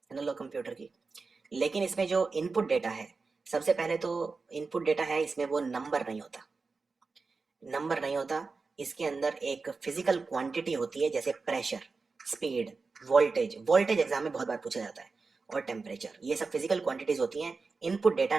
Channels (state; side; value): quieter; left; 4.3 dB